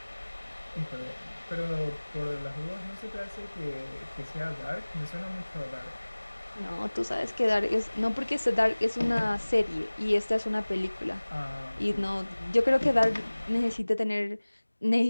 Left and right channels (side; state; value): both; inverted; correlation -1.00